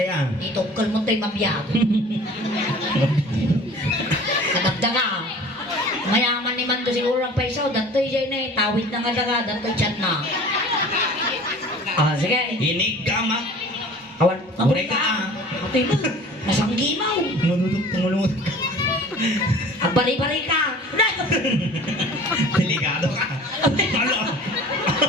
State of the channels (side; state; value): both; normal; correlation 0.45